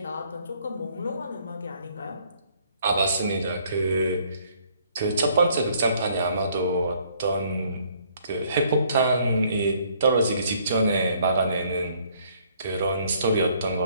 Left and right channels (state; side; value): inverted; both; correlation -0.63